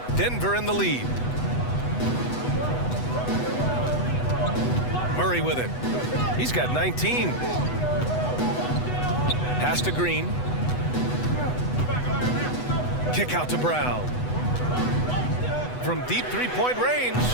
Denver in the lead. Murray with it. He's got 19. Pass to Green. Kick out to Brown. From deep three-point range.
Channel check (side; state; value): right; late; 8.1 ms